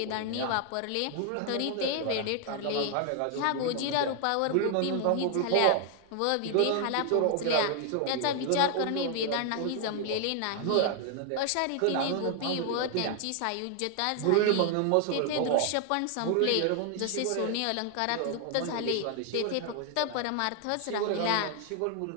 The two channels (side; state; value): both; different; correlation 0.00